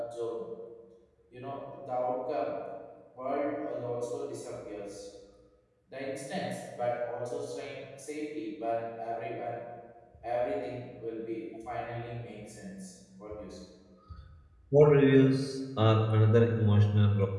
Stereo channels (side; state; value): both; identical; correlation 1.00